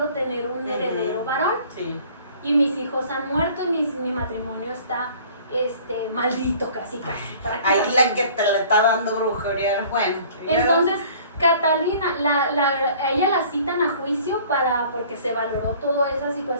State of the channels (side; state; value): both; inverted; correlation -0.51